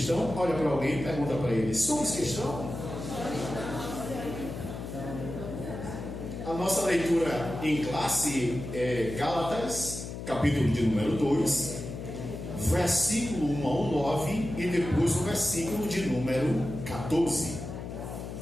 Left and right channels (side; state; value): left; noise; hum, 8 dB below the sound